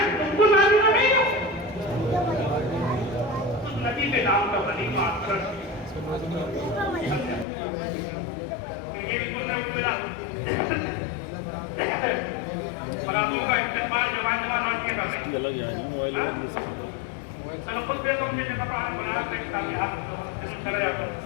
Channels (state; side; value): drops out; right; at 7.5 s